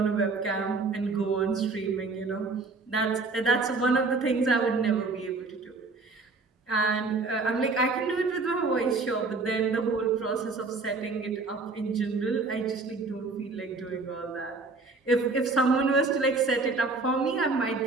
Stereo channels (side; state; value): left; quieter; 3.8 dB